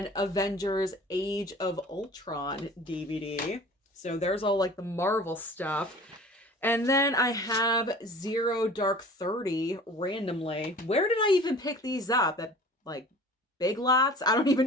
Avengers Age of Ultron DVD. So there's all like the Marvel stuff. And then I have Zero Dark 30 randomly. Where did I even pick these up? At like Big Lots? I don't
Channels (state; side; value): normal; both; correlation 0.44